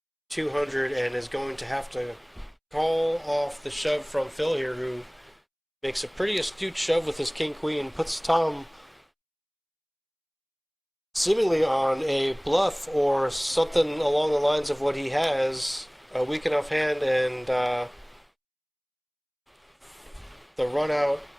200 and is going to have to call off the shove from Phil here, who makes a pretty astute shove with his king queen, puts Tom seemingly on a bluff or something along the lines of what he has, a weak enough hand, and the run out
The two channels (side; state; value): both; identical; correlation 1.00